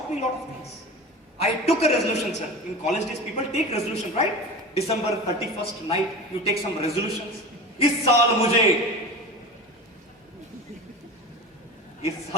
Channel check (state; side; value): normal; both; correlation 0.31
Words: me a lot of things. I took a resolution, sir. In college days, people take resolution, right? December 31st night, you take some resolutions. इस साल मुझे,